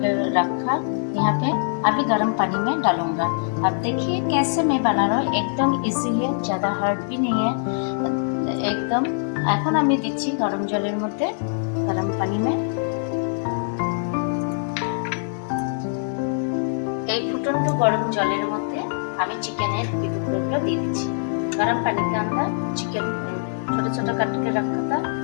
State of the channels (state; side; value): silent; right; digital silence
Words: रखा यहाँ पे। अभी गर्म पानी में डालूंगा। अब देखिए कैसे मैं बना रहा हूँ, एकदम इजी है, ज़्यादा हार्ड भी नहीं है, एकदम। এখন আমি দিচ্ছি গরম জলের মধ্যে, গরম পানি में এই ফুটন্ত গরম জলের মধ্যে আমি চিকেনের টুকরোগুলো দিয়ে দিচ্ছি। गरम पानी के अंदर चिकन छोटा छोटा काट के रखा था,